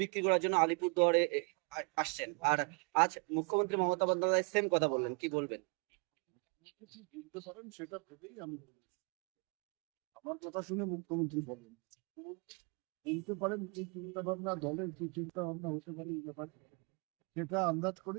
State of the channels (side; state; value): left; quieter; 34.8 dB